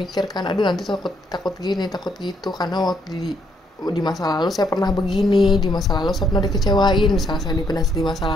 aduh nanti takut gini, takut gitu, karena waktu di masa lalu saya pernah begini, di masa lalu saya pernah dikecewain, misalnya saya dipendam di masa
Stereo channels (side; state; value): both; normal; correlation 0.71